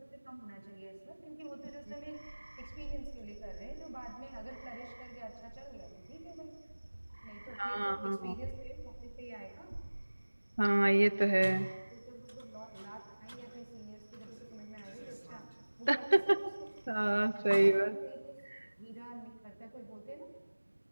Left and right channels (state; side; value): inverted; both; correlation -1.00